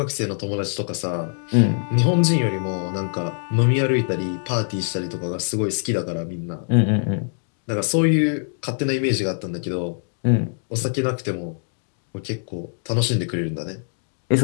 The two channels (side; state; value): right; silent; digital silence